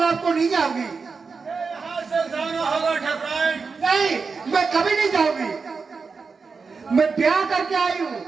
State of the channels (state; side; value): quieter; left; 4.9 dB